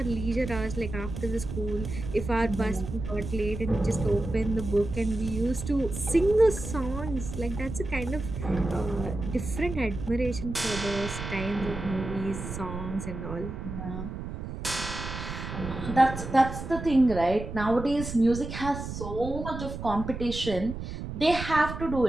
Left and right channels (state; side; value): noise; right; rumble, 7 dB below the sound